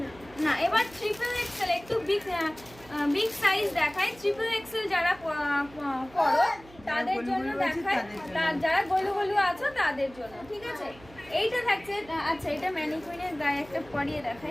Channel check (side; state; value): right; noise; hum, 22 dB below the sound